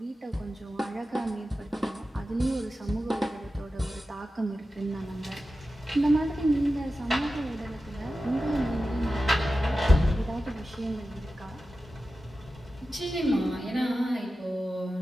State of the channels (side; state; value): both; normal; correlation 0.93